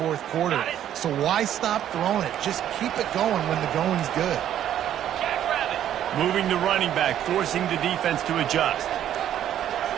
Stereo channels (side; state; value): left; quieter; 10.9 dB